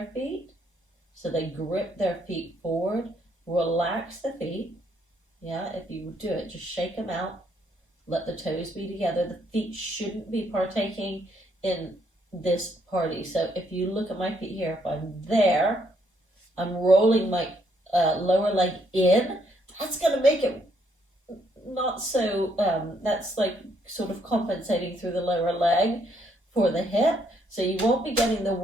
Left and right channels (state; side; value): normal; both; correlation 0.71